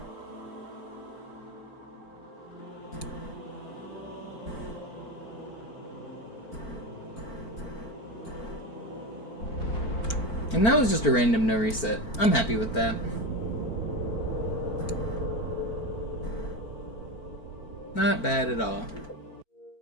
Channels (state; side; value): late; right; 4.5 ms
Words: And that was just a random no reset. I'm happy with that. Not bad at all.